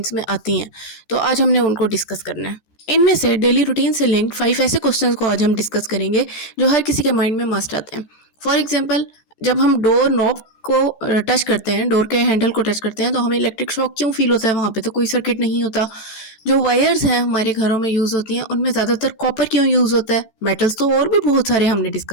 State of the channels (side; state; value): right; late; 14 ms